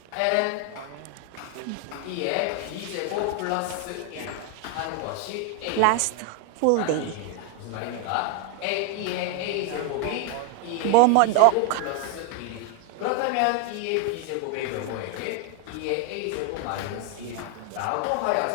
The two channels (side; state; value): both; different; correlation 0.01